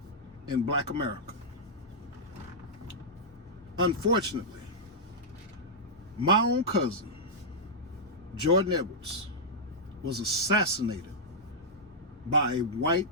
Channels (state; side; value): normal; both; correlation -0.10